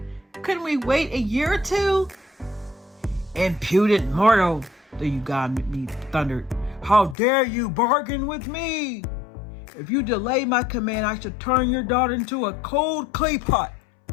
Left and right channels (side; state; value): right; drops out; at 7.2 s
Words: Couldn't we wait a year or two? Impudent mortal, the Yugami thundered. How dare you bargain with me? If you delay my command, I shall turn your daughter into a cold clay pot.